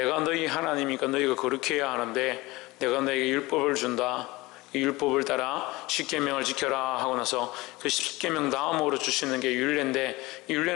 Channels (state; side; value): quieter; right; 21.1 dB